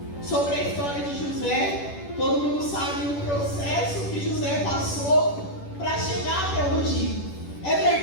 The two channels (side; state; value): right; late; 10 ms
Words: sobre a história de José. Todo mundo sabe o processo que José passou para chegar até hoje. É